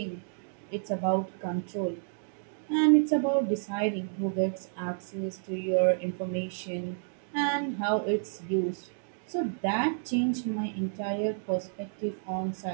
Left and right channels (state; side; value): silent; left; digital silence